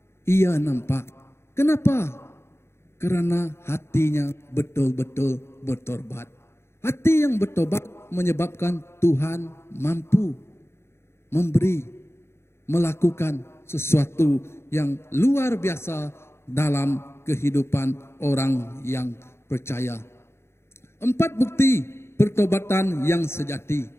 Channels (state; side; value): late; right; 0.12 ms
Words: ia nampak. Kenapa? Karena hatinya betul-betul bertobat. Hati yang bertobat menyebabkan Tuhan mampu memberi, melakukan sesuatu yang luar biasa dalam kehidupan orang yang percaya. 4 bukti pertobatan yang sejati.